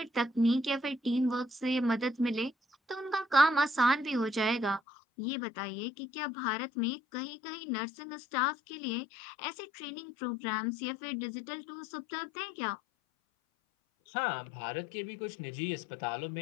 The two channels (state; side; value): drops out; right; at 4.8 s